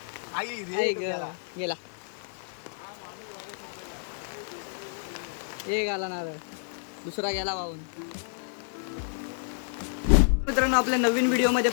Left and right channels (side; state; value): right; silent; digital silence